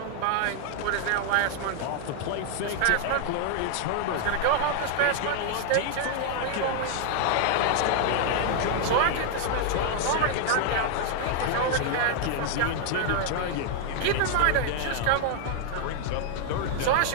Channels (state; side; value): different; both; correlation 0.00